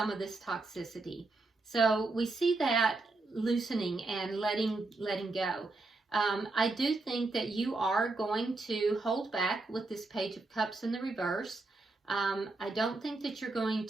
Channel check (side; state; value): left; quieter; 3.3 dB